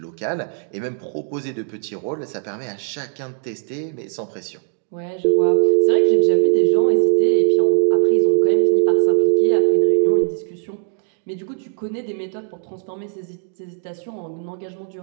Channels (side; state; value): left; silent; digital silence